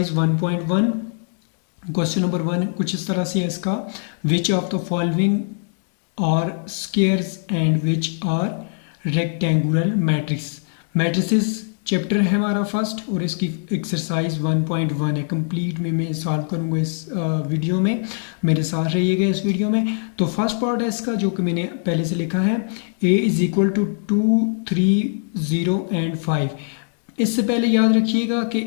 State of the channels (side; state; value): right; silent; digital silence